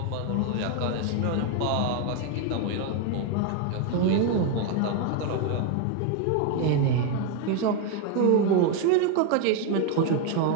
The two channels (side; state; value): both; different; correlation 0.01